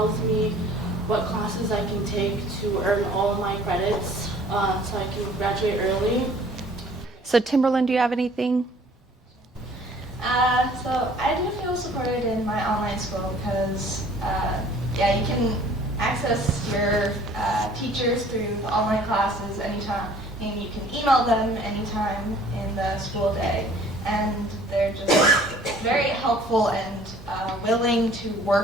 me what classes I can take to earn all my credits so I can graduate early. So Timberland, do you have anything? So I do feel supported in my online school because, you can access your teachers through the online classes anytime, and you can email them anytime in the the school day. And they're just very helpful and willing to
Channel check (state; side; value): normal; both; correlation 0.54